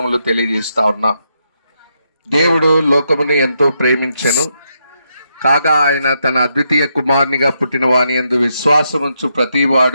తెలియజేస్తా ఉన్నా. దేవుడు లోకమును ఎంతో ప్రేమించెను, కాగా ఆయన తన అద్వితీయ కుమారునిగా పుట్టిన వాని యందు విశ్వాసముంచు ప్రతి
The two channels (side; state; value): both; inverted; correlation -0.80